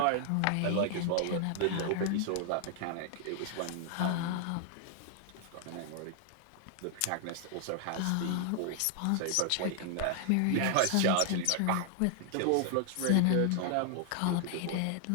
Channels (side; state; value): both; different; correlation 0.00